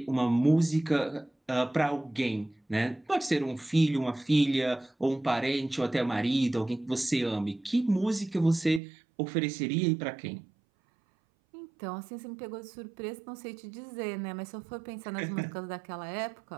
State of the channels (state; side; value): drops out; left; at 8.8 s